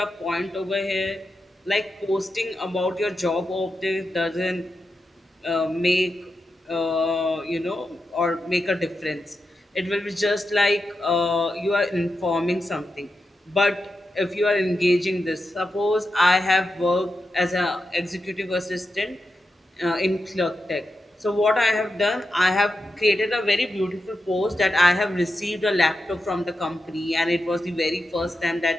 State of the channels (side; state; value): both; normal; correlation 0.88